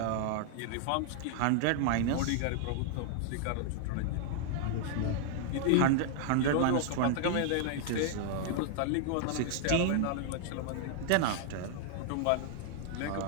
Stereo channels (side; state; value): both; different; correlation 0.00